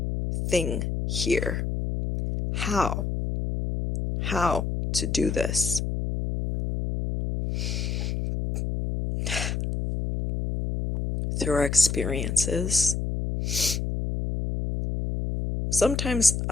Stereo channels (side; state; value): left; noise; hum, 2 dB below the sound